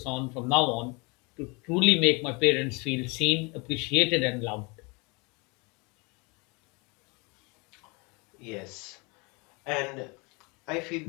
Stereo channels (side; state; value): right; quieter; 28.7 dB